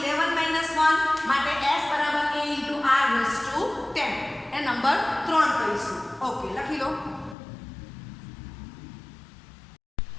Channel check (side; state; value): right; drops out; at 7.4 s